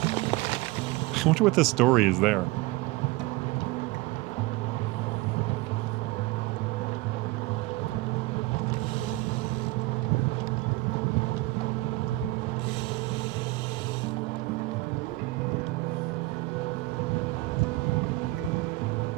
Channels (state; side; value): quieter; left; 20.3 dB